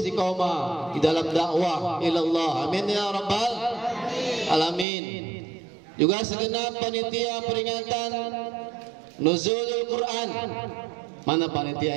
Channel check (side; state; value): left; drops out; at 4.9 s